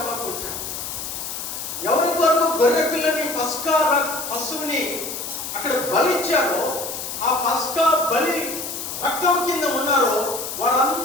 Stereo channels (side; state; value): left; noise; hiss, 6 dB below the sound